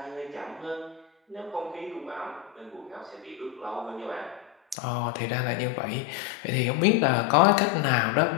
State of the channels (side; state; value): right; drops out; at 4.8 s